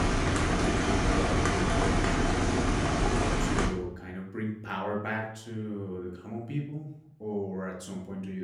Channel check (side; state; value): both; identical; correlation 1.00